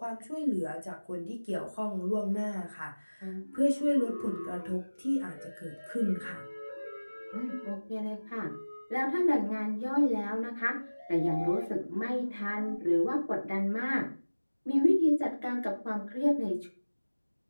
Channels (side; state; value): both; inverted; correlation -1.00